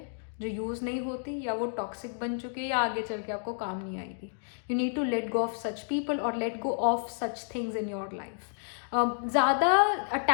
जो यूज़ नहीं होती, या वो टॉक्सिक बन चुकी है, या आगे चल के आपको काम नहीं आएगी. You need to let go of such people और let go of such things in your life. ज़्यादा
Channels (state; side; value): silent; right; digital silence